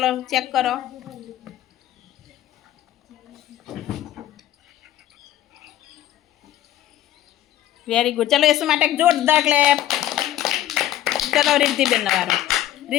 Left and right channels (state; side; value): quieter; right; 13.0 dB